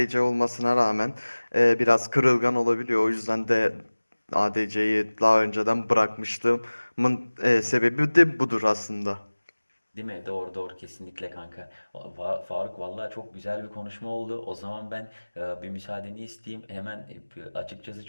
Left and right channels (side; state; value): both; inverted; correlation -1.00